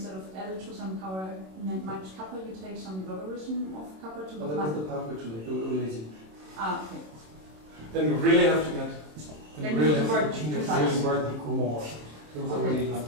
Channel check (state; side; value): late; left; 27 ms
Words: of L to some power minus kappa, you take some logarithm of kappa to the that was the part we're too late. We're lazy. Ah, okay. Then we really have to get. Then we have to work precise. Really work more. It was already